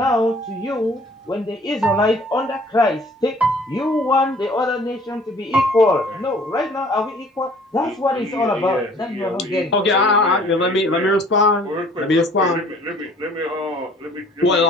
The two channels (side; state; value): both; normal; correlation 0.54